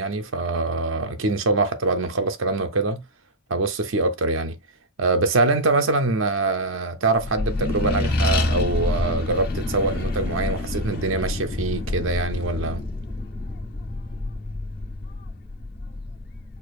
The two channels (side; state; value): both; normal; correlation -0.02